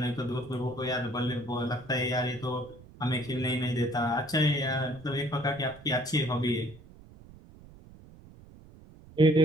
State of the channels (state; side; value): noise; right; rumble, 21 dB below the sound